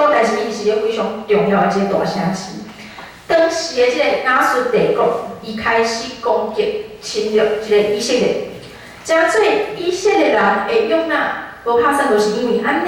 但是伊是一个非常重要的一个大城市。当时的即个亚述帝国，伊开始攻击、侵略即个以色列，真做以色列人的约拿，无拍算就是因为安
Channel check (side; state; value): both; identical; correlation 1.00